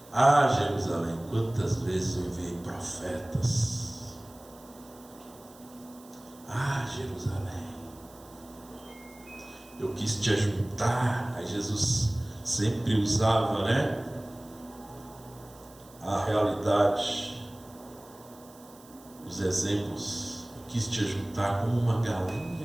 Ah, Jerusalém, quantas vezes eu enviei profetas. Ah, Jerusalém, eu quis te ajuntar. Aí Jesus sempre usava, a realidade, os exemplos. Eu quis te ajuntar como uma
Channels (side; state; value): right; noise; hiss, 24 dB below the sound